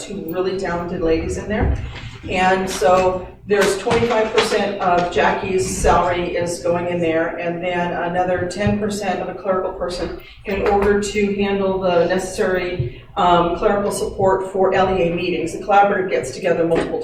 really talented ladies in there. And so there's 25% of Jackie's salary is going in there, and then another 10% of a clerical person in order to handle the necessary clerical support for LEA meetings. The collaborative gets together multiple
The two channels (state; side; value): identical; both; correlation 1.00